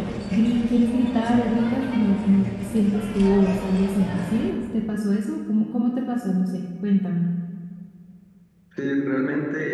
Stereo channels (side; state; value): both; identical; correlation 1.00